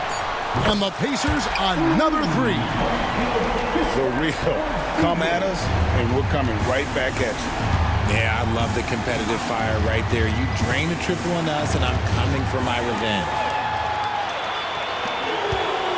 And the Pacers, another three. For real. Come at us, and we're coming right back at you. Yeah, I love the competitive fire right there. You drain a triple on us, and I'm coming for my revenge.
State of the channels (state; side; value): identical; both; correlation 1.00